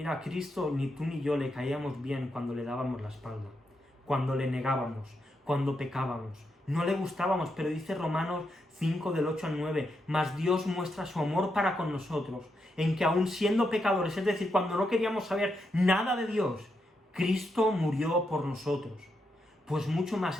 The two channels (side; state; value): both; normal; correlation 0.82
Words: a Cristo ni tú ni yo le caíamos bien cuando le dábamos la espalda, cuando le negábamos, cuando pecábamos. No le gustábamos, pero dice Romanos 5 del 8 al 9, mas Dios muestra su amor para con nosotros, en que aun siendo pecadores, es decir, cuando no queríamos saber nada de Dios, Cristo murió por nosotros. Pues mucho más